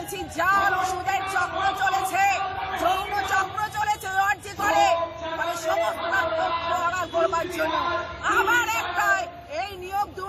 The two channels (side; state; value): both; identical; correlation 1.00